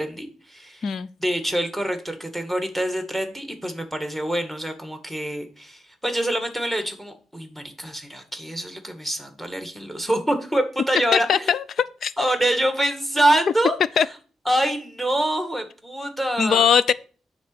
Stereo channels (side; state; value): both; normal; correlation 0.83